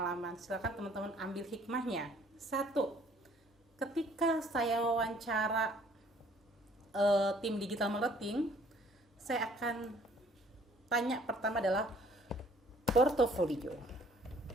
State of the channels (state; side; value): normal; both; correlation 0.58